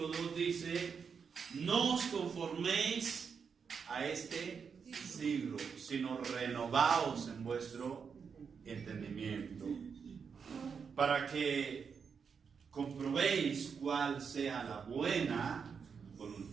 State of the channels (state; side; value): quieter; left; 6.2 dB